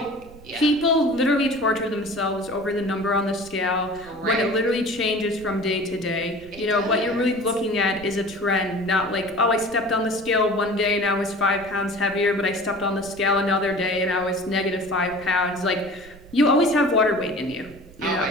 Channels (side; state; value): right; noise; rumble, 21 dB below the sound